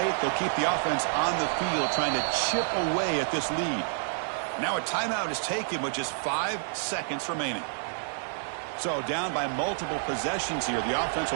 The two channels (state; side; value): silent; left; digital silence